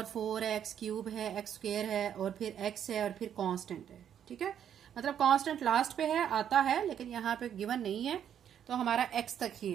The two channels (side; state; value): left; quieter; 9.3 dB